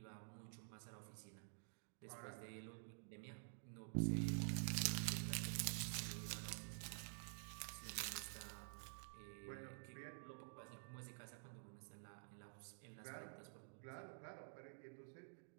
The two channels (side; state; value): left; silent; digital silence